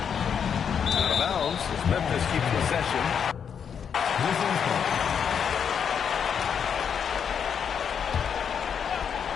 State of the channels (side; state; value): right; quieter; 7.4 dB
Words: Out of bounds as Memphis keeps possession.